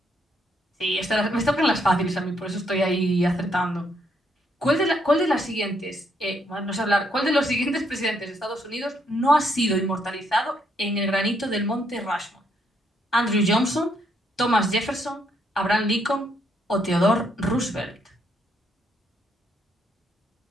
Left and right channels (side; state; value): both; normal; correlation 0.73